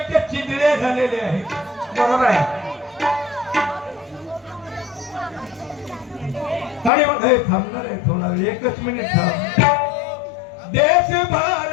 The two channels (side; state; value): right; drops out; at 6.9 s